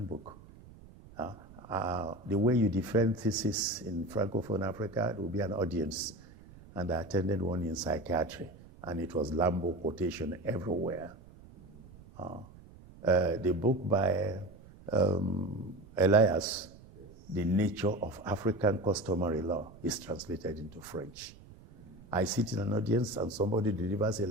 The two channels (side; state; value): right; noise; rumble, 20 dB below the sound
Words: The way you defend thesis in Francophone Africa, there will be an audience. And I attended one in psychiatry, and it was Lambo quotation everywhere. The book by Elias, The Nature of African Customary Law, is translated into French. I sit in an audience and somebody delivers a